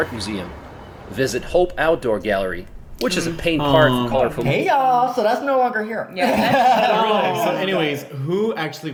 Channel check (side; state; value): both; identical; correlation 1.00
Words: museum. Visit Hope Outdoor Gallery, which is a paint park for colorful. Hey y'all, so that's no longer here. Yeah, that's, So anyways, who actually